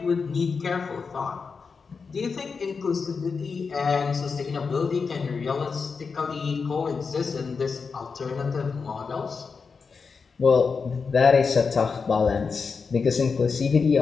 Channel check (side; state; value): right; quieter; 5.1 dB